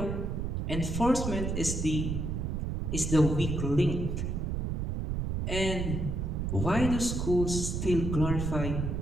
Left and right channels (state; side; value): noise; right; rumble, 1 dB below the sound